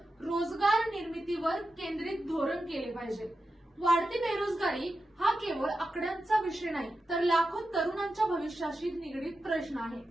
रोजगार निर्मितीवर केंद्रित धोरण केले पाहिजे. वाढती बेरोजगारी हा केवळ आकड्यांचा विषय नाही, तर लाखो तरुणांच्या भविष्याशी निगडीत प्रश्न आहे.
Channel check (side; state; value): both; normal; correlation 0.91